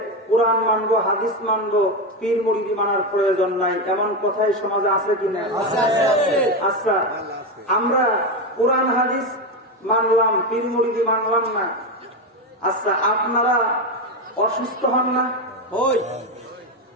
কোরআন মানবো, হাদিস মানবো, পীর মুরিদি মানার প্রয়োজন নাই, এমন কথাই সমাজে আছে কিনা? আচ্ছা, আমরা কোরআন হাদিস মানলাম, পীর মুরিদি মানলাম না, আচ্ছা আপনারা অসুস্থ হন না?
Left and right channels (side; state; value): both; normal; correlation 0.12